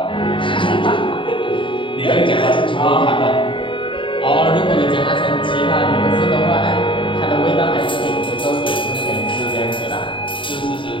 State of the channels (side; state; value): right; late; 0.25 ms